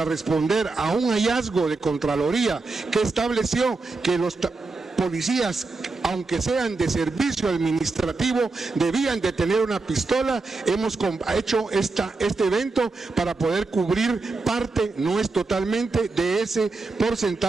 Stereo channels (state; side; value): quieter; left; 3.7 dB